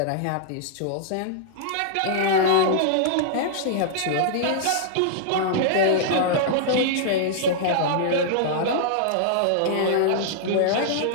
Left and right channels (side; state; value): both; different; correlation -0.02